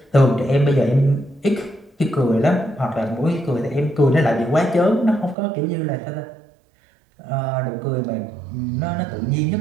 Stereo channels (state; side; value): drops out; left; at 5.4 s